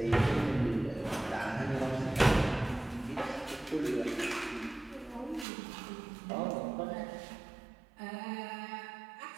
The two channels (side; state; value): left; drops out; at 5.5 s